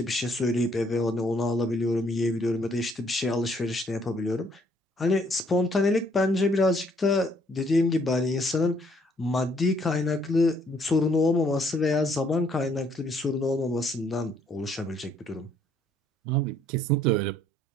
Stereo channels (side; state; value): both; normal; correlation 0.66